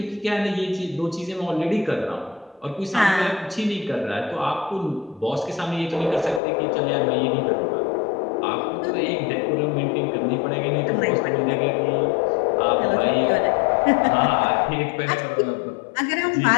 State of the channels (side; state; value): right; drops out; at 6.4 s